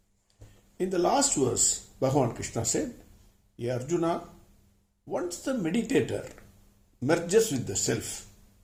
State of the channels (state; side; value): identical; both; correlation 1.00